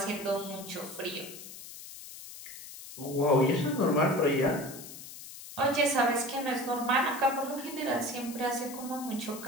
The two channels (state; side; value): noise; left; hiss, 13 dB below the sound